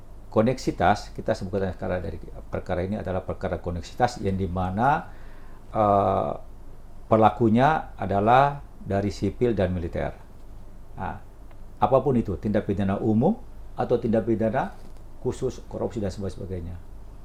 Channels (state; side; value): identical; both; correlation 1.00